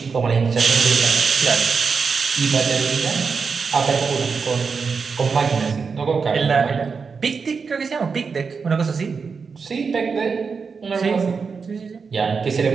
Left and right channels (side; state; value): left; quieter; 5.3 dB